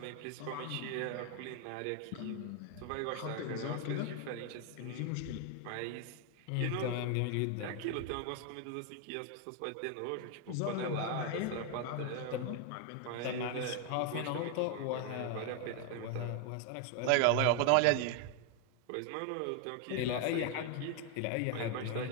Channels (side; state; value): both; different; correlation 0.01